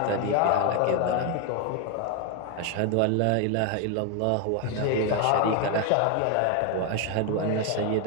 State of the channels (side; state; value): both; different; correlation 0.01